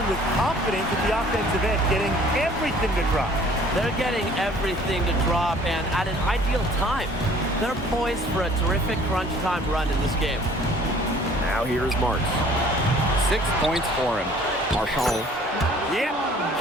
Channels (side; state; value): both; normal; correlation 0.54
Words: with confidence at the offensive end, getting everything to drop. They're getting everything to drop, and at an ideal time. They're poised for a terrific crunch time run in this game. Now here's Marks. 6 points for him. Marchand. Yep,